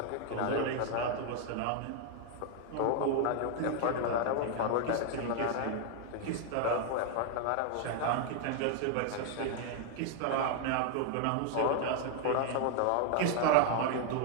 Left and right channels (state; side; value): different; both; correlation 0.00